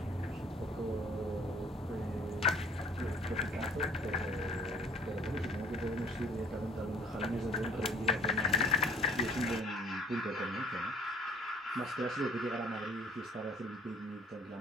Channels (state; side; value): normal; both; correlation 0.55